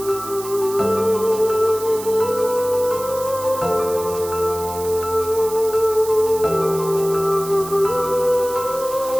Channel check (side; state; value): right; noise; hiss, 13 dB below the sound